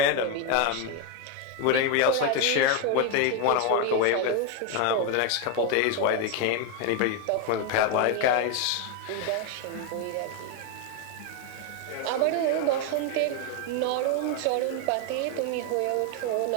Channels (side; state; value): both; different; correlation 0.02